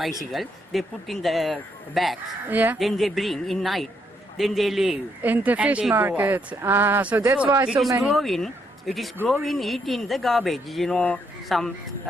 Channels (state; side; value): normal; both; correlation 0.75